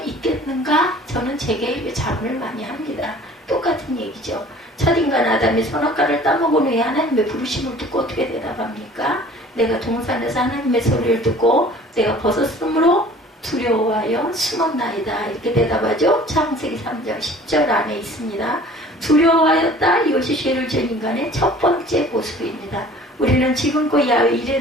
저는 제게 자문을 많이 합니다. 똑같은 얘기죠. 첫인간 아담이 선악과를 따먹은 후에 하나님의 부르심을 듣고 어떻게 대답합니까? 내가 동산에서 하나님의 소리를 듣고 내가 벗었으므로 두려워하여 숨었나이다. 이렇게 대답하죠. 창세기 3장 10절 안에 있습니다. 두려워하였다. 이것이 죄를 지은 인간의 첫 번째 모습입니다. 우리는 지금껏 야훼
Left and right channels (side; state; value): both; normal; correlation 0.48